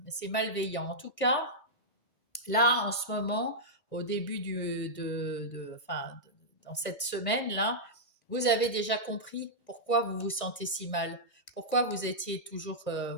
malveillant. En tout cas, là, en ce moment, au début enfin, dans cette semaine-là, vous avez déjà compris pourquoi vous vous sentez si mal, pourquoi vous étiez toujours,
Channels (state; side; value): late; right; 1.6 ms